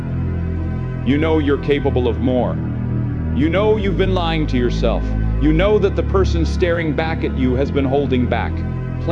you're capable of more. You know you've been lying to yourself. You know that the person staring back at you has been holding back,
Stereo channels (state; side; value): identical; both; correlation 1.00